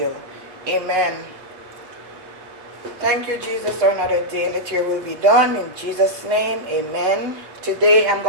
Amen. Thank you, Jesus, for another day. Let your will be done. In Jesus' name, amen. Today I'm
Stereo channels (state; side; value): late; left; 7.9 ms